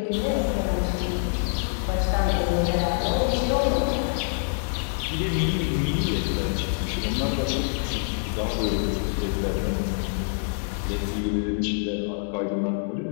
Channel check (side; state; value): right; silent; digital silence